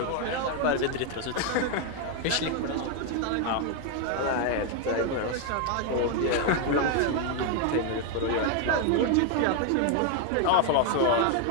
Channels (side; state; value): both; different; correlation 0.01